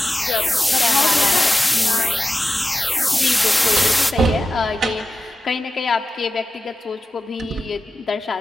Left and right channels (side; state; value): both; normal; correlation 0.93